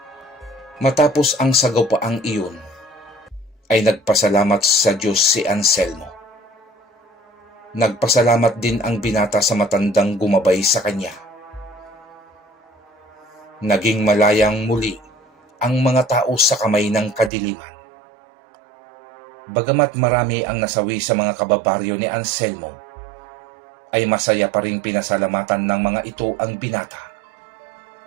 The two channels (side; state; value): left; drops out; at 17.3 s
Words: Matapos ang sagawpaang iyon, ay nagpasalamat sa Diyos si Anselmo. Nagpasalamat din ang binata sa matandang gumabay sa kanya. Naging malayang muli ang mga tao sa kamay ng kadiliman. Bagamat marami ang nasawi sa mga kababaryo ni Anselmo, ay masaya pa ring pinasalamatan ng mga ito ang binata.